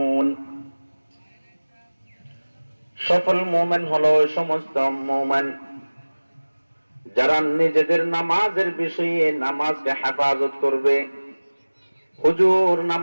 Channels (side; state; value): both; inverted; correlation -1.00